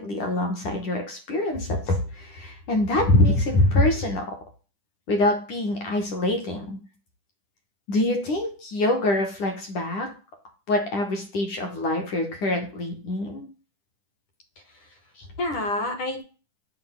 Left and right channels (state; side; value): late; right; 10 ms